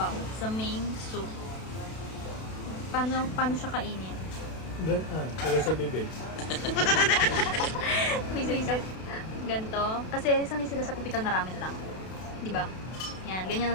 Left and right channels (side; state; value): right; late; 32 ms